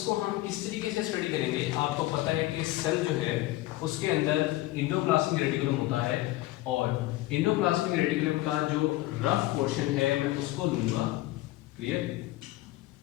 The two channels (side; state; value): right; quieter; 17.4 dB